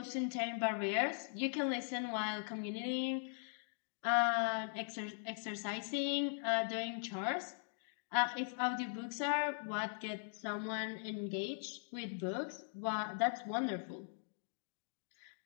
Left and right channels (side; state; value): right; silent; digital silence